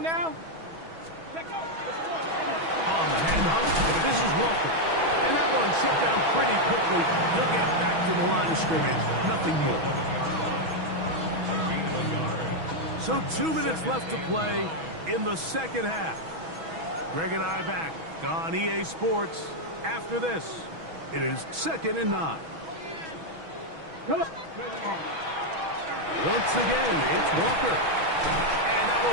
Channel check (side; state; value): left; late; 6.2 ms